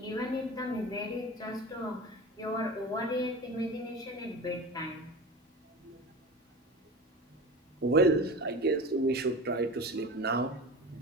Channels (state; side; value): normal; both; correlation 0.31